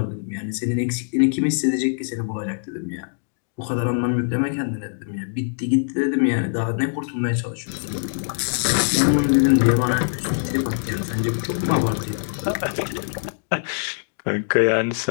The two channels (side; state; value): right; silent; digital silence